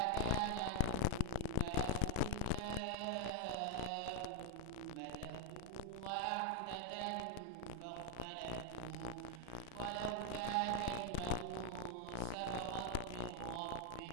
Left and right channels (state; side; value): different; both; correlation 0.00